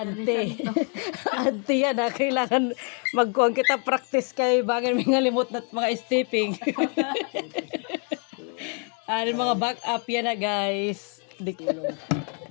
ante yan na kailangan magkuan kita practice kay bagan may ngalimot na mga stepping. Ano mga back up yan na guys.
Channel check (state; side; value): quieter; right; 39.6 dB